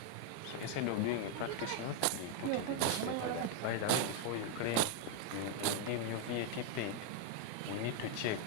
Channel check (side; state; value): both; different; correlation 0.00